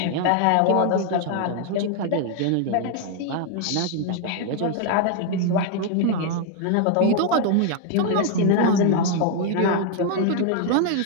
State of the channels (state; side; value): different; both; correlation 0.00